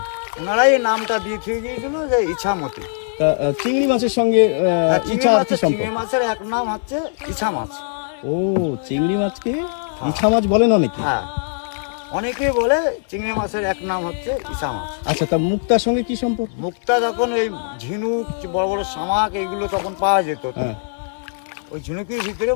ওনারাই এই নামটা দিয়ে থুয়ে গিয়েছিল যে ইছামতি। তা, চিংড়ি মাছের সঙ্গে ইছা আর কি সম্পর্ক? চিংড়ি মাছের এক নাম হচ্ছে ইছা মাছ। ও, চিংড়ি মাছকে ইছা মাছ বলেন অনেকে। হ্যাঁ, অনেকেই বলে চিংড়ি মাছের এক নাম হচ্ছে ইছা মাছ। আচ্ছা, তা মুক্তার সঙ্গে কি সম্পর্ক? মুক্তা যখন এই ঝিনুক, বড় বড় শামাক এইগুলো তখন পাওয়া যেত, হ্যাঁ, ওই ঝিনুকের ভিতরে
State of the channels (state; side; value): silent; right; digital silence